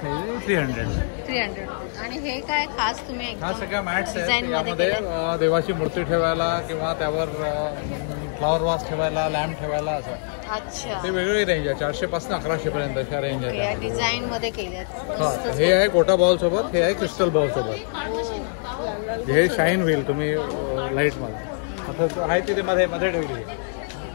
आहे 300. 300. आणि हे काय खास तुम्ही हा एकदम सगळ्या मॅट्स आहेत. डिझाईन मध्ये यामध्ये केलंय? देवाची मूर्ती ठेवायला किंवा त्यावर फ्लॉवर वास ठेवायला, लॅम्प ठेवायला असं. अच्छा. ते वेगवेगळी रेंज आहे. 400 पासून 1100 पर्यंत अशा रेंज ओके, या आहे. डिझाईन मध्ये केल्यात. हा, हे आहे गोटा बॉल सोबत, हे आहे क्रिस्टल बॉल सोबत. हे शाईन होईल तुम्ही लाईट मध्ये. आता आहे तिथे मध्ये मध्ये ठेवली.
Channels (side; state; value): right; silent; 62 dB below the other